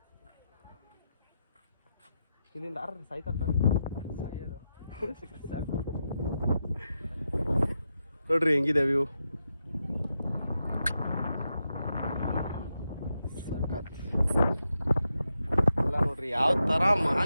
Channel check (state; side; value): inverted; both; correlation -0.86